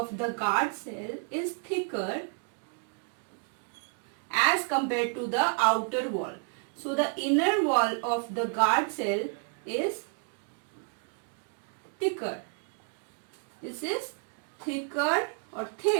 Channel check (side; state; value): left; quieter; 38.9 dB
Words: the guard cell is thicker as compared to the outer wall. So the inner wall of the guard cell is thicker. This is thicker or